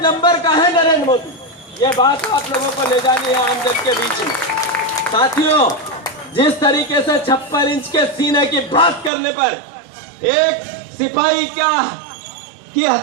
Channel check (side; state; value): left; drops out; at 9.1 s